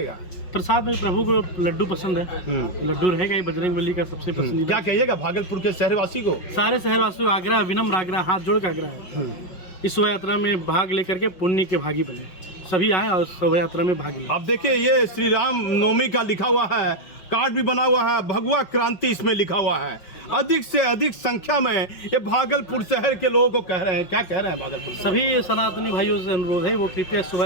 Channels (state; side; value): late; right; 5.4 ms